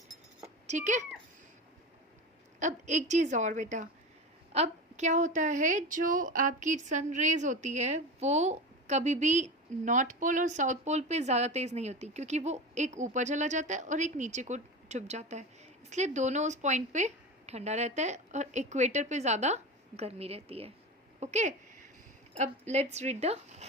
ठीक है। अब एक चीज़ और बेटा, अब क्या होता है, जो आपकी सन रेज होती है वो कभी भी नॉर्थ पोल और साउथ पोल पे ज़्यादा तेज़ नहीं होती, क्योंकि वो एक ऊपर चला जाता है और एक नीचे को छुप जाता है, इसलिए दोनों उस पॉइंट पे ठंडा रहता है, और इक्वेटर पे ज़्यादा गर्मी रहती है। ओके, अब let's read the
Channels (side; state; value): both; normal; correlation 0.26